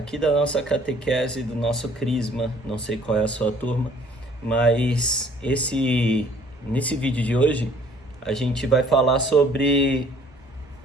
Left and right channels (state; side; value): normal; both; correlation 0.57